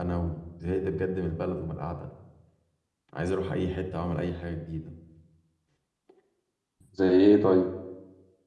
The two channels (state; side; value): identical; both; correlation 1.00